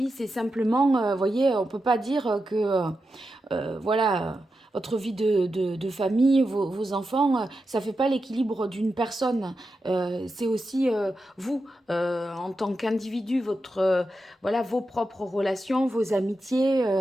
c'est simplement, vous voyez, on peut pas dire que voilà, votre vie de famille, vos enfants, ça fait pas l'équilibre d'une personne. C'est aussi vous, en tant qu'individu, votre, voilà, vos propres relations, vos amitiés,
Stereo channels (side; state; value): both; normal; correlation 0.89